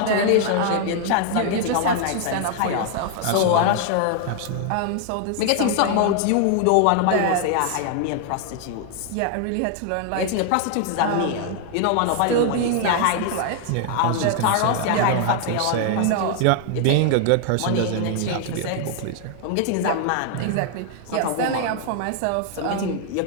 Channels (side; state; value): both; different; correlation 0.00